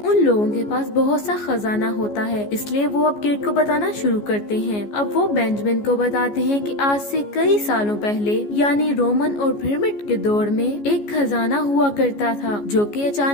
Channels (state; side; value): late; right; 14 ms